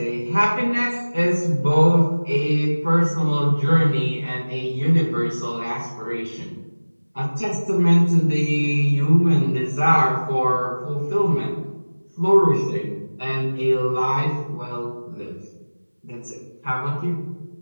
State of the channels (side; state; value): both; inverted; correlation -1.00